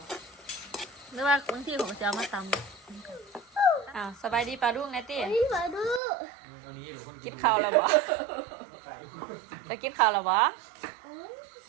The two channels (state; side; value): drops out; left; at 6.0 s